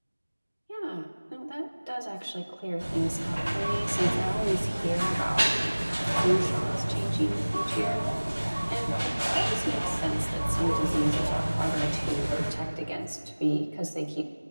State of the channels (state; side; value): inverted; both; correlation -1.00